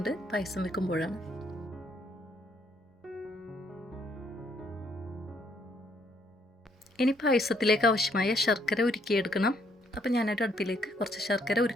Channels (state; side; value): normal; both; correlation 0.70